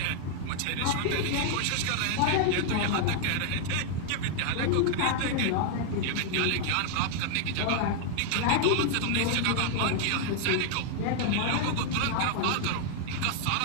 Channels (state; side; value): different; both; correlation 0.00